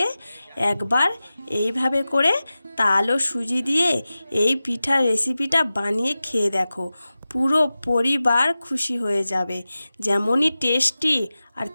একবার এইভাবে করে তাল ও সুজি দিয়ে এই পিঠার রেসিপিটা বানিয়ে খেয়ে দেখো। পুরো পরিবার খুশি হয়ে যাবে। যেমনই টেস্টি আর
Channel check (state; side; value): inverted; both; correlation -0.95